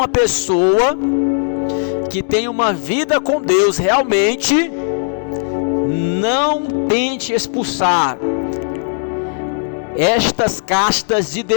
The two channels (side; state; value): right; silent; digital silence